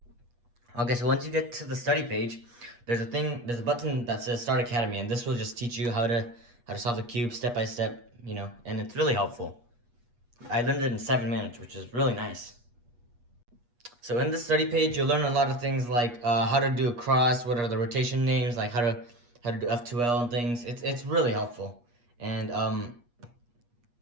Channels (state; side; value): late; left; 8.3 ms